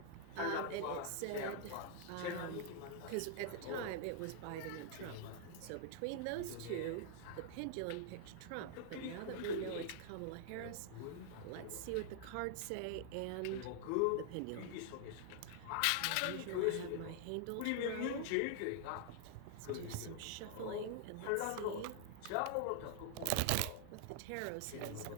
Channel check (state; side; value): different; both; correlation -0.01